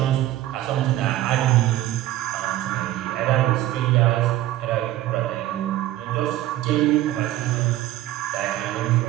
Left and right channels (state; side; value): quieter; left; 14.6 dB